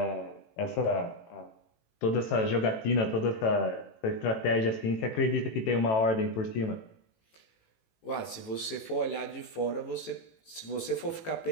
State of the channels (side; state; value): right; late; 18 ms